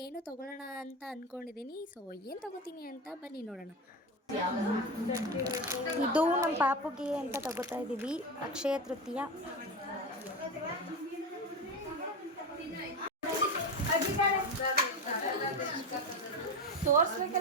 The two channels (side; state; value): both; normal; correlation 0.20